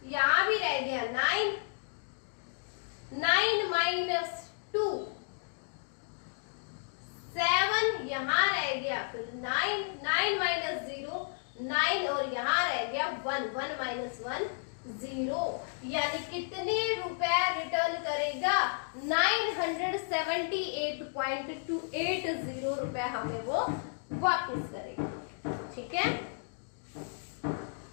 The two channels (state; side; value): silent; right; digital silence